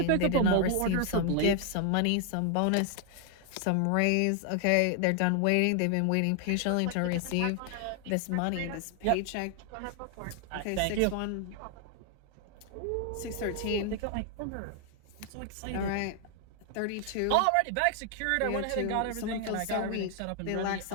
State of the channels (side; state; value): both; different; correlation 0.00